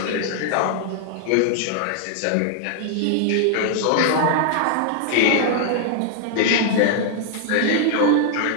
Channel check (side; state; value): both; different; correlation 0.00